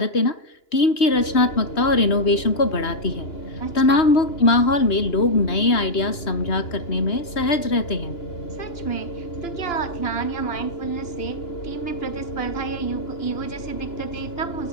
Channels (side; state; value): right; late; 3.2 ms